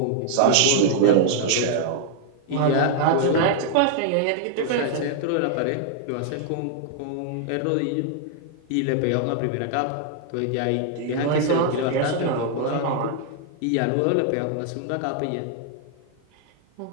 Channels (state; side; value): different; both; correlation -0.01